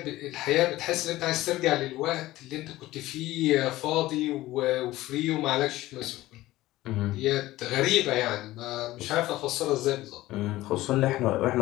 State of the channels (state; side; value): quieter; right; 16.8 dB